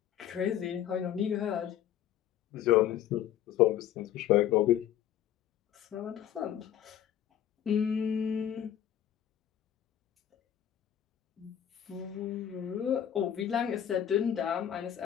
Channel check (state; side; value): quieter; right; 10.5 dB